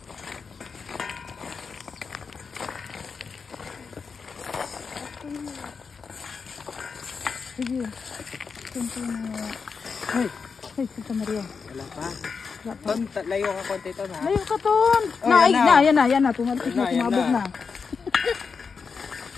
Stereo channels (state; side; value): quieter; right; 5.4 dB